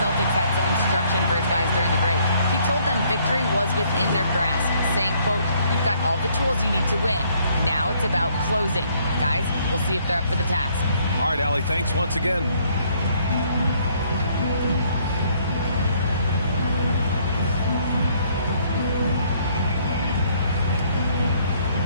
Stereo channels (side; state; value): both; inverted; correlation -0.65